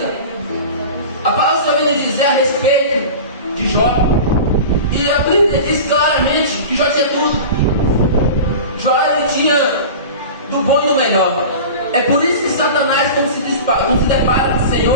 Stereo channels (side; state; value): both; inverted; correlation -0.33